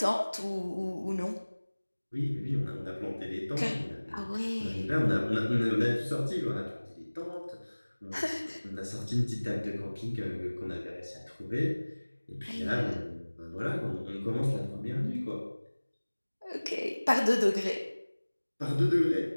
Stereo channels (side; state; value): both; inverted; correlation -1.00